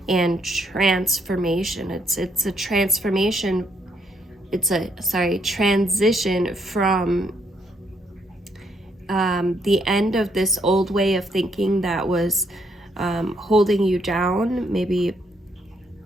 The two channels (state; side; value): normal; both; correlation 0.73